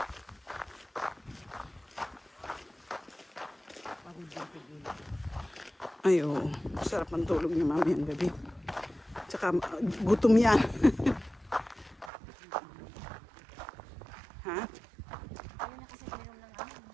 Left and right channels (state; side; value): drops out; left; at 12.1 s